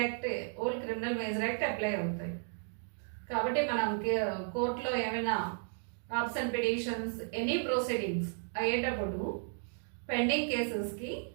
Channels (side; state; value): left; silent; 55 dB below the other